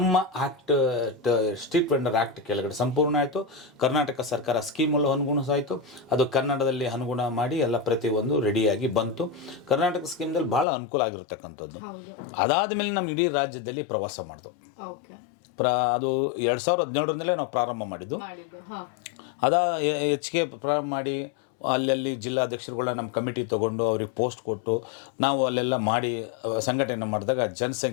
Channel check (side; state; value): right; drops out; at 10.7 s